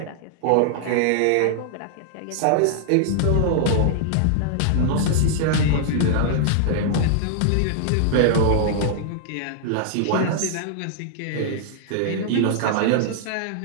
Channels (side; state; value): both; different; correlation -0.01